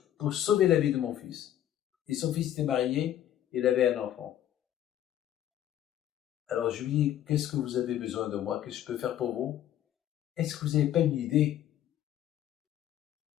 pour sauver la vie de mon fils. Et son fils était marié, il avait un enfant. Alors je lui dis, qu'est-ce que vous avez besoin de moi? Qu'est-ce que je peux faire pour vous? Est-ce que vous n'avez pas une idée?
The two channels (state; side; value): quieter; right; 11.6 dB